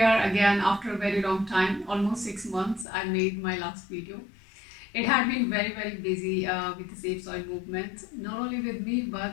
again after a very long time, almost 6 months. I made my last video. It had been very busy with the Safe Soil movement, not only with me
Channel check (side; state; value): right; drops out; at 2.9 s